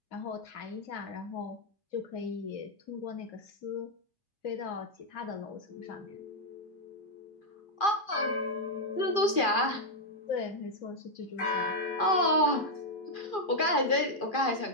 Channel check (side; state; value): right; late; 2.4 ms